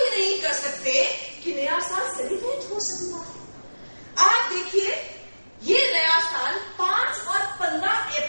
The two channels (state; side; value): inverted; both; correlation -1.00